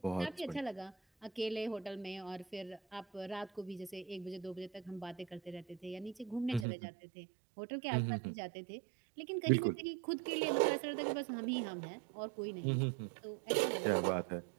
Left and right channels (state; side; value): drops out; left; at 6.7 s